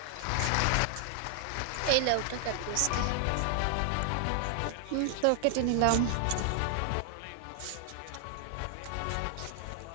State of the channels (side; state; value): both; different; correlation 0.00